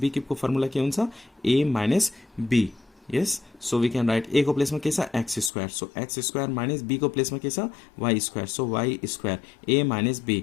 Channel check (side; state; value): right; drops out; at 5.5 s